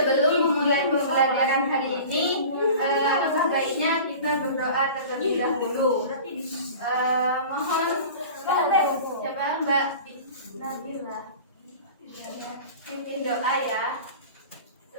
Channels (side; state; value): both; inverted; correlation -0.39